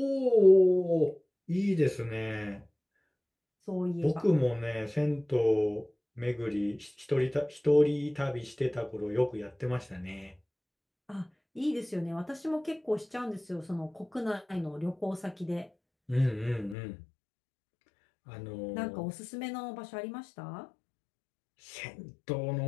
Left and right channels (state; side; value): drops out; right; at 16.8 s